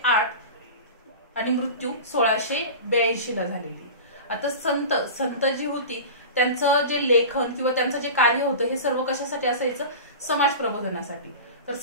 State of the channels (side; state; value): both; inverted; correlation -0.32